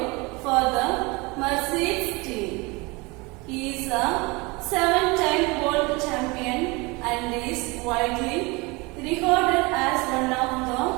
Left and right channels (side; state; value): left; quieter; 25.9 dB